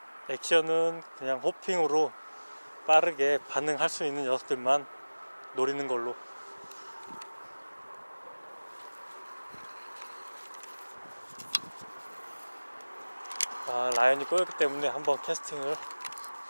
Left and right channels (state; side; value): inverted; both; correlation -1.00